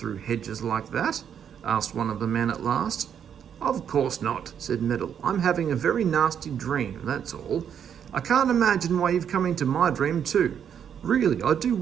hedges like that?" asked one of the men at last. "Of course not," said Meddle. "I'm having a very nasty dream, that's all. I can't imagine why you've come into my dream too. Really, I do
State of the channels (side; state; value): left; quieter; 8.4 dB